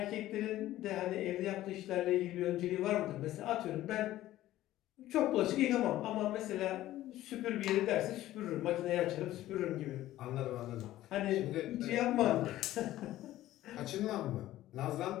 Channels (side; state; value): right; quieter; 14.7 dB